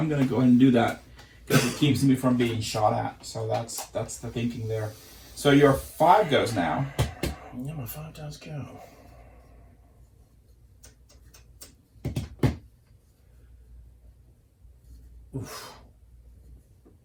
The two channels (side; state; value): both; identical; correlation 1.00